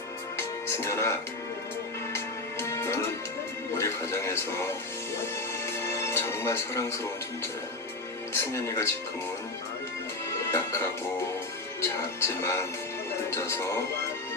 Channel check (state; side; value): quieter; right; 3.0 dB